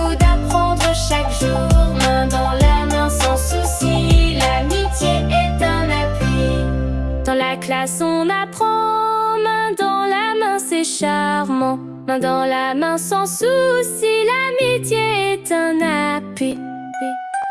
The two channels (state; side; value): identical; both; correlation 1.00